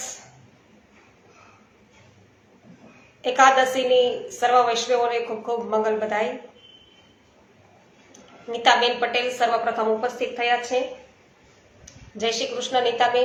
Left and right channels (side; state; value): both; identical; correlation 1.00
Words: એકાદશીની સર્વ વૈષ્ણવોને ખૂબ ખૂબ મંગલ બધાઈ। નીતાબેન પટેલ સર્વપ્રથમ ઉપસ્થિત થયા છે। જય શ્રી કૃષ્ણ